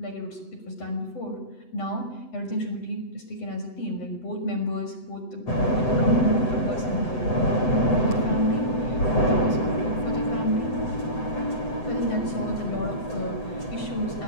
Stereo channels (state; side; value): late; right; 8.0 ms